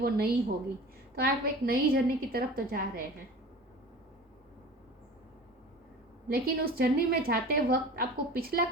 नई होगी। तो आप एक नई जर्नी की तरफ तो जा रहे हैं, लेकिन उस जर्नी में जाते वक्त आपको पिछला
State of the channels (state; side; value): normal; both; correlation 0.39